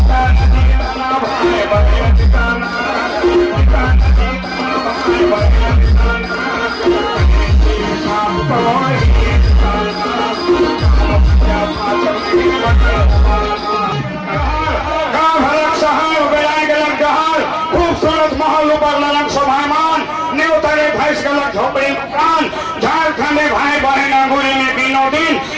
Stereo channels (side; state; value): both; identical; correlation 1.00